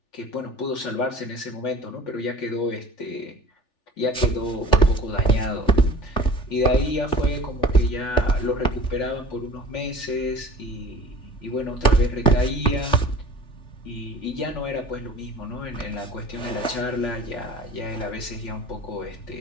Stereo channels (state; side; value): late; right; 3.4 ms